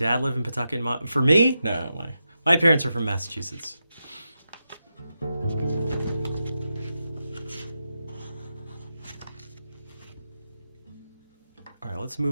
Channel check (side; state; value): both; inverted; correlation -0.88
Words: live in Pawtucket? For me? No, my parents are from Massachusetts. All right, let's